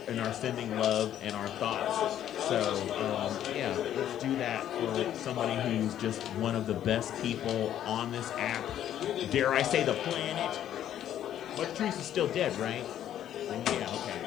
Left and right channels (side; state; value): right; quieter; 11.0 dB